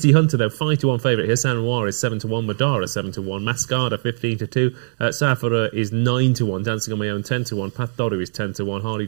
Hunter, though, 5-1 favourite here. San Noir is 7-1, Madara 7-1, Mascada 15-2, Safara is 9-1, Dancing on My Own 10-1, Path Doru is 10-1, Harley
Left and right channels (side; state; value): left; silent; digital silence